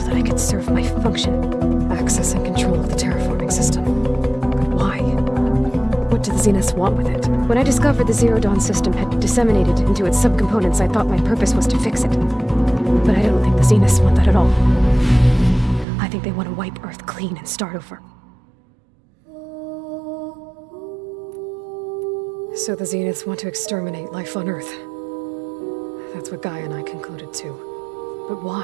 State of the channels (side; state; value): left; drops out; at 15.9 s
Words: that I could serve my function. Access and control of the terraforming system. But why? What do the Zeniths want with it? When I discovered the Zero Dawn system had disseminated into its subcomponents, I thought my purpose was to fix it. But I don't think the Zeniths want that at all. I think they want to wipe Earth clean and start over. So the Zeniths want to exterminate life on Earth. That's what Gaia and I concluded too. But